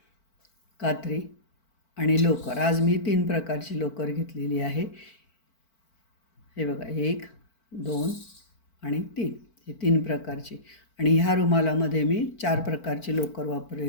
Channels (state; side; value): late; right; 4.5 ms